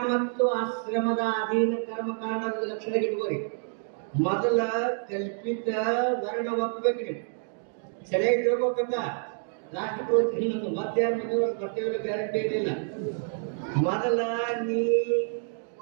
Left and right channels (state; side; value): silent; left; 59 dB below the other